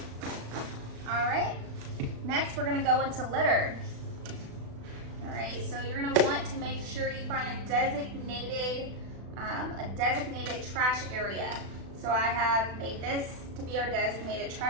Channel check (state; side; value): late; left; 36 ms